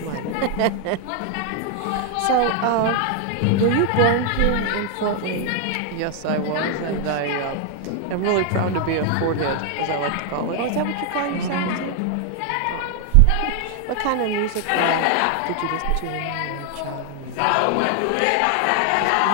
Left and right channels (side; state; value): both; different; correlation 0.00